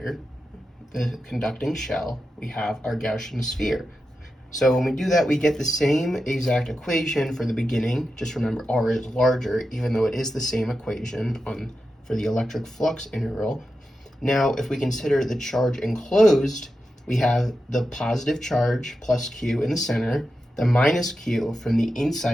the conducting shell, we have our Gaussian sphere. So when we do that, we get the same exact equation for the beginning. Just remember R is larger, even though it is the same equation for the electric flux integral. Now, if we consider the charge enclosed, we have the positive charge plus Q in the center, the minus Q from the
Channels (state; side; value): normal; both; correlation 0.90